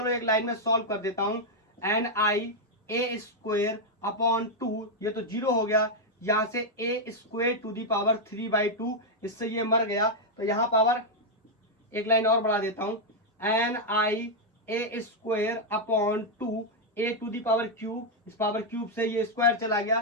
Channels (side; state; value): both; normal; correlation -0.01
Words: एक लाइन में सॉल्व कर देता हूं। NI A² अपॉन 2, ये तो 0 हो गया, यहां से A² टू दी पावर 3/2, इससे ये मर गया। तो यहां पावर एक लाइन और बढ़ा देता हूं। NI A² upon 2 A to the power cube, इस पावर क्यूब से ये स्क्वायर चला